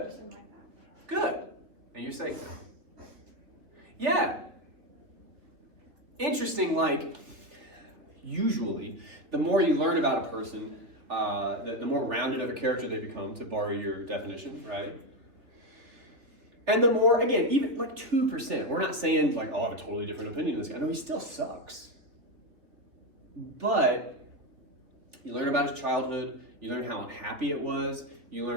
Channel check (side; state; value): left; late; 3.5 ms